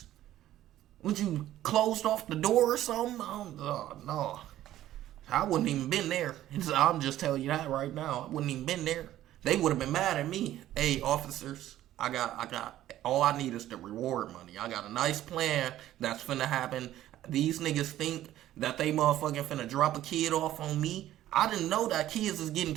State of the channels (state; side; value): quieter; left; 13.4 dB